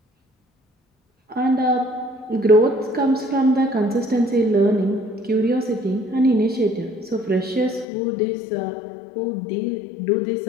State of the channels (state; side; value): drops out; right; at 7.9 s